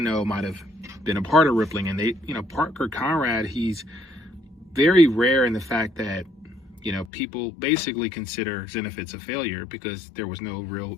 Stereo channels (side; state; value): right; drops out; at 7.1 s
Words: might have been a part of Rippling, and Parker Conrad, he's very rare in the fact that people basically consider Zenefits a failure because there was no real